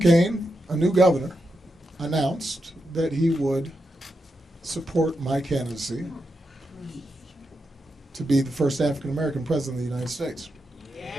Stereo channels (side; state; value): both; normal; correlation 0.86